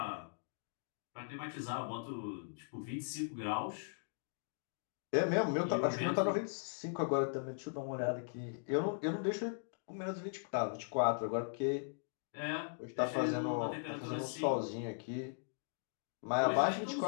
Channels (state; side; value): silent; right; digital silence